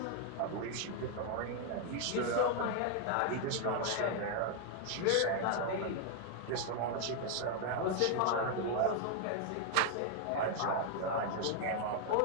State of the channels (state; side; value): different; both; correlation 0.01